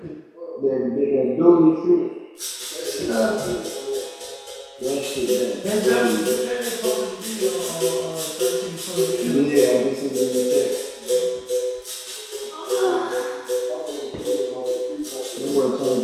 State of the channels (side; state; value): both; identical; correlation 1.00